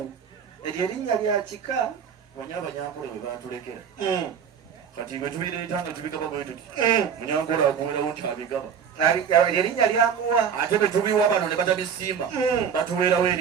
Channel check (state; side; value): quieter; left; 7.4 dB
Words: eryo erinnya lya kika banya abanyankole bwe batulekera kati bwe tubireeta nga tubigaba bwe tuti munyankole akuweerawo nti abigaba eryo erinnya lyamuwa ate bwe tubiwa bano ne batabisiima batuweerawo